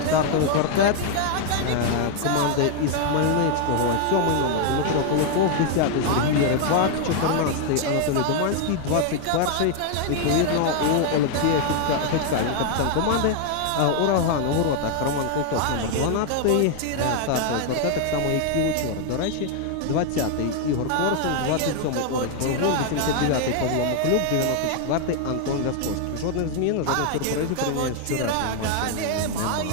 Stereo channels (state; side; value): different; both; correlation 0.00